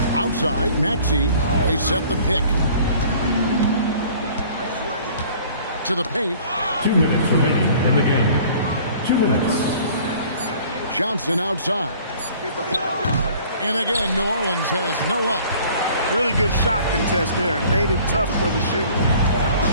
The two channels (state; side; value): inverted; both; correlation -0.51